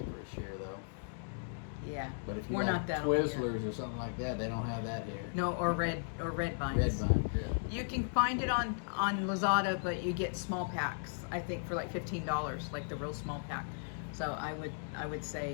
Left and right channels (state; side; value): silent; right; digital silence